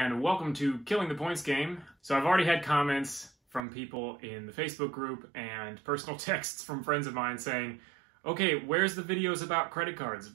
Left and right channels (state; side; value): drops out; left; at 3.6 s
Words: welcome to Killing the Points Game. So I've already had comments from people in the Facebook group and personal texts from friends of mine saying, okay, where's the videos about credit cards?